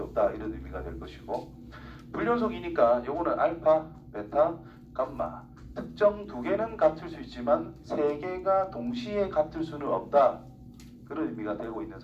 없다 이런 의미가 될 것이고, 불연속이니까 요거는 알파, 베타, 감마 특정 두 개는 같을 수 있지만 세 개가 동시에 같을 수는 없다 그런 의미가 되고 있는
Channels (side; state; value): both; identical; correlation 1.00